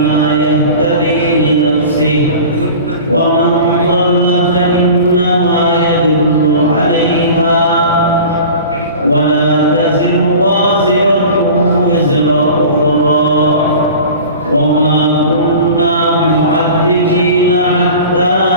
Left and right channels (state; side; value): inverted; both; correlation -0.38